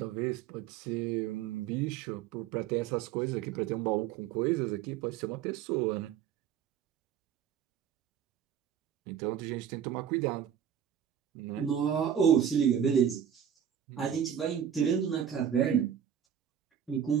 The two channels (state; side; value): quieter; left; 9.0 dB